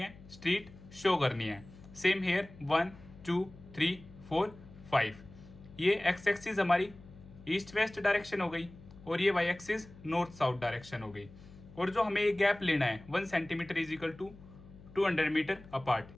स्ट्रीट शो करनी है। सेम हेयर 1 2 3 4 5 ये एक्स एक्सिस हमारी ईस्ट वेस्ट डायरेक्शन हो गई और ये Y axis north south direction हो गई। और जो हमें ये गैप लेना है 1 centimetre is equal to 200 metre apart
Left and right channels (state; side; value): noise; left; hum, 20 dB below the sound